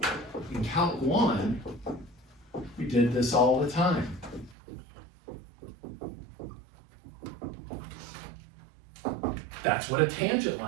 In Calc 1, we did this all the time. That's what a tangent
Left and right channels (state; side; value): drops out; left; at 4.5 s